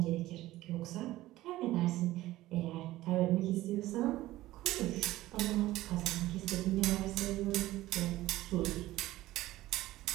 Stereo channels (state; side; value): quieter; left; 16.4 dB